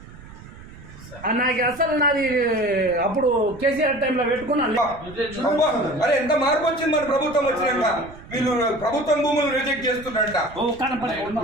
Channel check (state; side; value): noise; right; rumble, 18 dB below the sound